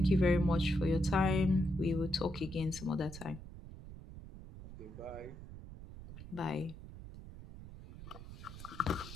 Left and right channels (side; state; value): right; noise; rumble, 14 dB below the sound